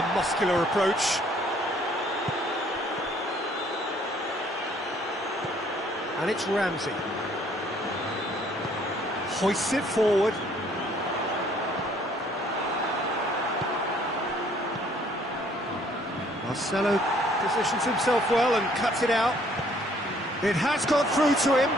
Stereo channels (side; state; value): both; normal; correlation 0.61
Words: muscular approach. And it's Ramsey. Hoists it forward. Marcelo positions himself well and cuts it out. It has got through to him,